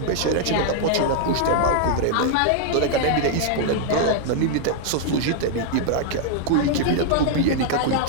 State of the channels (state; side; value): different; both; correlation 0.00